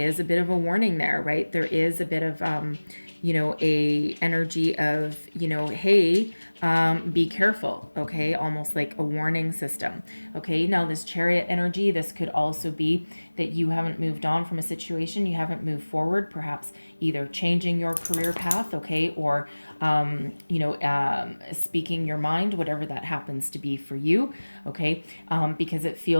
a bit of a warning there, right? There is a bit of, a energy of, hey, be careful, okay? Almost like a warning system, okay? Now, this Chariot energy, this could also be that you haven't moved on from a situation, you haven't moved forward, perhaps either changing your career path, okay, or speaking your mind, whatever that happens to be for you, okay, because it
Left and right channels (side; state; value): both; inverted; correlation -1.00